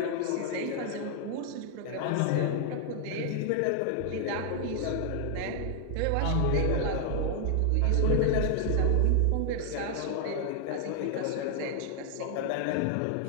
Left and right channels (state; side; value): different; both; correlation 0.00